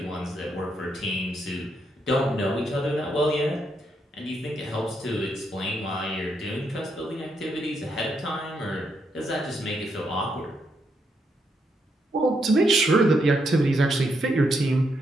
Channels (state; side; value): normal; both; correlation 0.78